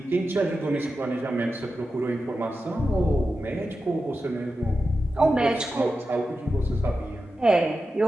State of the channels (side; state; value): both; normal; correlation 0.91